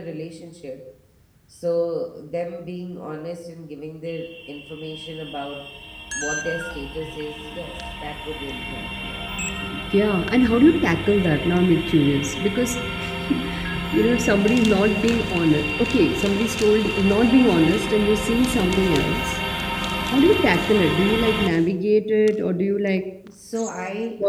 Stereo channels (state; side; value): identical; both; correlation 1.00